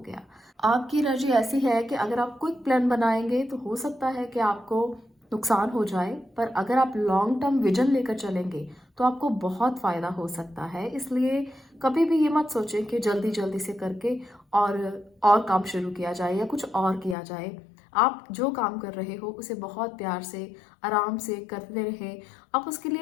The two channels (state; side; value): drops out; right; at 17.2 s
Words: आपकी एनर्जी ऐसी है कि अगर आप क्विक प्लान बनाएंगे तो हो सकता है कि आपको नुकसान हो जाए, पर अगर आप लॉन्ग टर्म विजन लेकर चलेंगे तो आपको बहुत फ़ायदा हो सकता है। इसलिए कभी भी ये मत सोचें कि जल्दी जल्दी से करके और काम शुरू किया जाए या कुछ और किया जाए। आप जो काम कर रहे हो उसे बहुत प्यार से, आराम से करते रहें। आप उसके